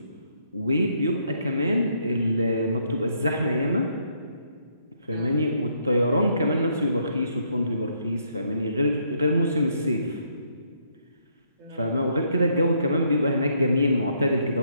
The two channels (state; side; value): inverted; both; correlation -0.72